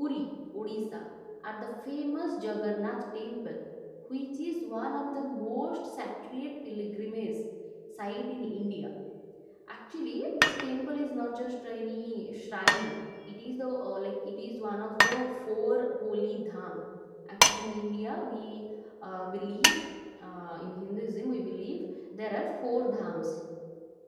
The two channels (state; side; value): identical; both; correlation 1.00